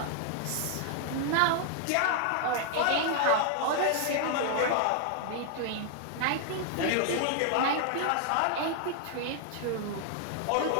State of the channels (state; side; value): different; both; correlation 0.00